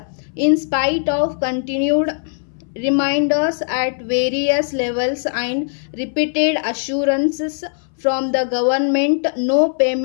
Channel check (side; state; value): right; silent; 63 dB below the other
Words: In spite of continued reminders at various levels and repeated assurances from the government, no